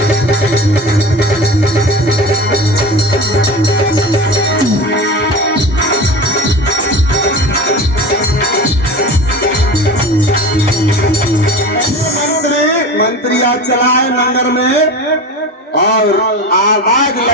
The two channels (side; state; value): both; normal; correlation 0.31